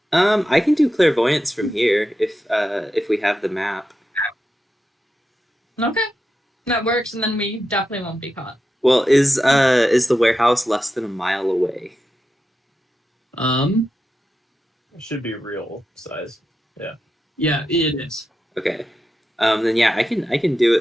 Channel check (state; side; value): normal; both; correlation 0.89